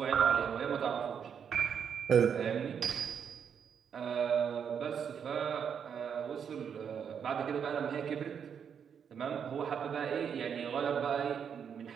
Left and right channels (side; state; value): left; quieter; 7.5 dB